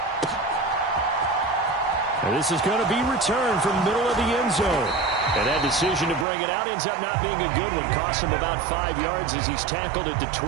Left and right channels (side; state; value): left; drops out; at 6.2 s